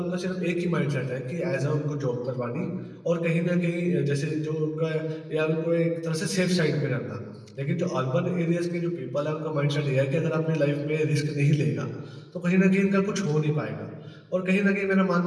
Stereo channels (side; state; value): both; identical; correlation 1.00